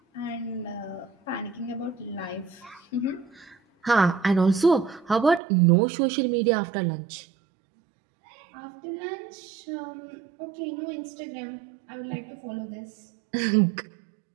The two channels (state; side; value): drops out; left; at 5.4 s